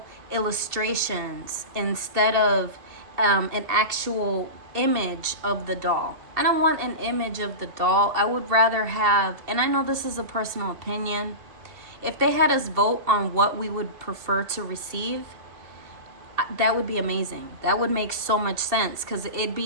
illustrations instead of an actual image of the doll. I don't want an image of the doll. I would rather have, and I know this is a personal opinion, if they had us vote on what we would prefer to receive, that would be amazing. That would make so much sense, because it'd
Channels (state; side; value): late; left; 2.7 ms